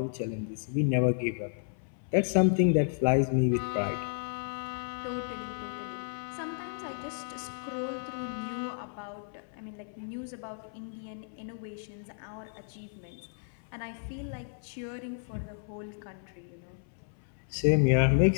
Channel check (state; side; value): silent; right; 56 dB below the other